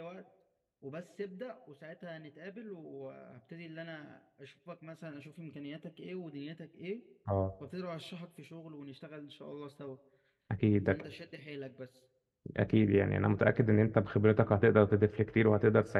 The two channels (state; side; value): identical; both; correlation 1.00